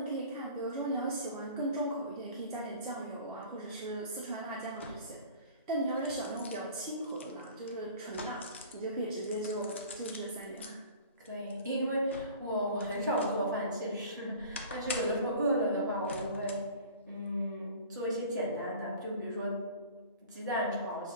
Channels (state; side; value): inverted; both; correlation -0.43